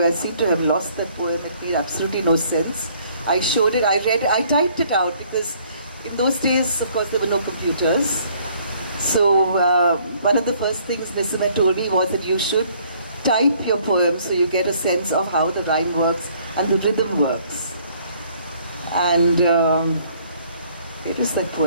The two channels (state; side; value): inverted; both; correlation -0.61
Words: seem to have lost that poem. It made absolutely no sense. I showed it, I read it, I typed it out because in those days, of course, there were no computers. So one of the first things Nisima told me was that you should type your poem so you get a sense of how the rhyme works and the rhythm works. And it was that